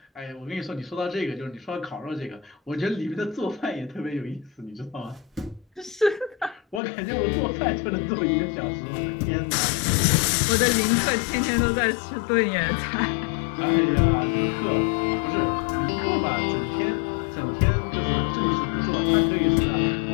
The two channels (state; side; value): drops out; right; at 6.8 s